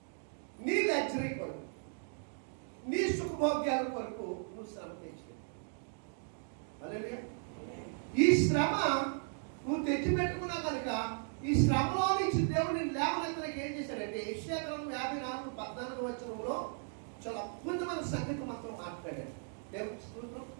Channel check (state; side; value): silent; left; 54 dB below the other